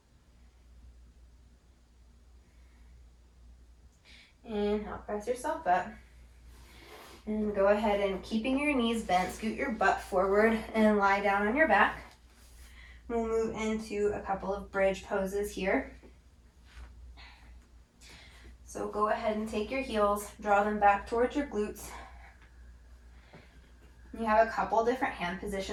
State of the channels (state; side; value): identical; both; correlation 1.00